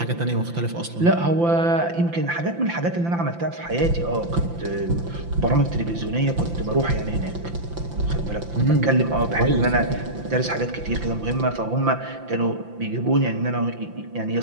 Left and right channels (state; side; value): late; left; 5.9 ms